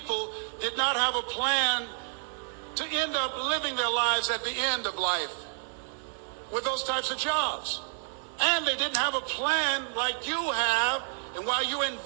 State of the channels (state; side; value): silent; left; digital silence